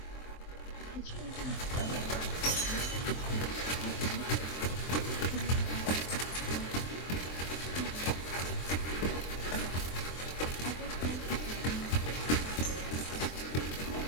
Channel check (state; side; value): late; right; 23 ms